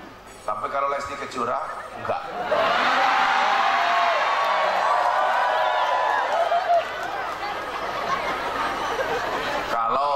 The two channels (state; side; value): identical; both; correlation 1.00